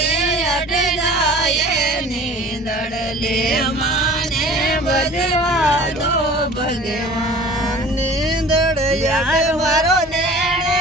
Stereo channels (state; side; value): normal; both; correlation 0.44